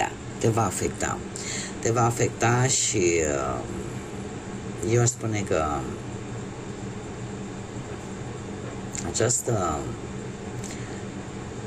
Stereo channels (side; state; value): both; identical; correlation 1.00